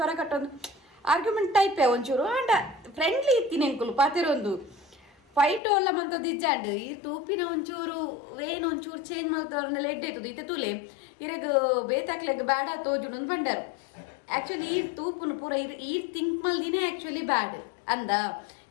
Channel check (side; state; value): right; drops out; at 5.6 s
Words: ಕಟ್ಟೊಂದು ಆರ್ಗ್ಯುಮೆಂಟ್ ಟೈಪೇ ಒಂಚೂರು ಅಂಡ ಫ್ರೆಂಡ್ಲಿ ಇತ್ತೀನಿ ಎಂಕುಲು ಪಾತೇರ ಒಂದು ಫೈಟ್ ಎಲ್ಲ ಮಂತದ್ದು ಇಜ್ಜಾಂಡ್ ಈ ತೂಪಿನ ಒಂಚೂರು ವೇನ್ ಒಂಚೂರು ಚೇಂಜ್ ಮಾಡ್ತವ್ರನ್ನೆಲ್ಲ ಎಡ್ಡೈತದು ಇತ್ತೆ ತೂಲೆ ಇರಗ ಬೇತಾಕ್ಲೆಗ್ ಬ್ಯಾಡ ತೋಜುಡು ಒಂದು ಬಂಡಾರು ಆ್ಯಕ್ಚುಲಿ ಈ ತೂಪುನು ಪೂರ ಈ ಥಿಂಕ್ ಮಲ್ದಿನೇ ಆ್ಯಕ್ಚುಲಿ ಬ್ಯಾಡ್ ಅಂದ